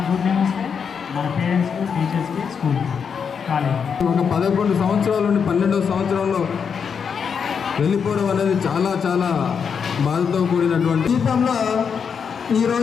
గుడ్ నేమ్ వస్తే మన పేరెంట్స్కి టీచర్స్కి స్కూల్కి కాలేజ్. ఒక 11 సంవత్సరాల నుండి 12వ సంవత్సరంలో వెళ్ళిపోవడం అనేది చాలా చాలా బాధతో కూడినటువంటి జీవితంలో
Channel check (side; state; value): right; quieter; 6.6 dB